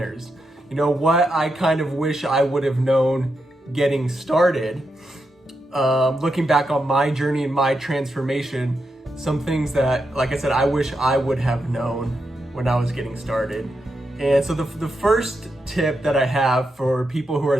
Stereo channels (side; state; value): both; normal; correlation 0.85